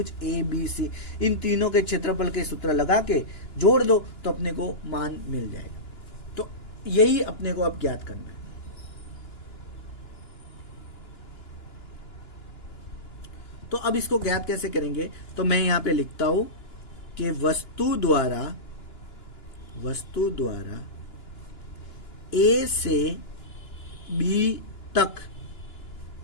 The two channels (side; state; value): right; late; 2.9 ms